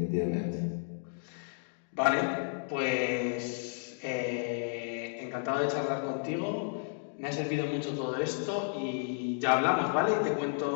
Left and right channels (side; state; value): right; silent; digital silence